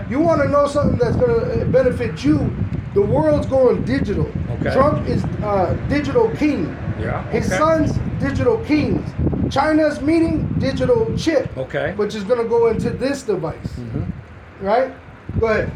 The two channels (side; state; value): both; identical; correlation 1.00